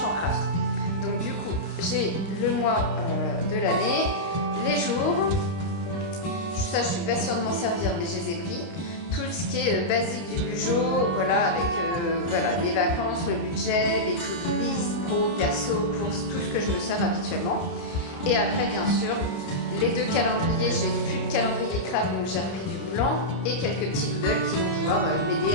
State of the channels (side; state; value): right; late; 29 ms